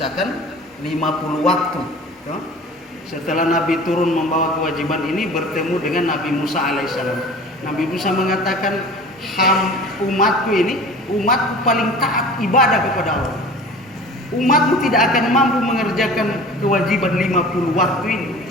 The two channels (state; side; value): normal; both; correlation 0.41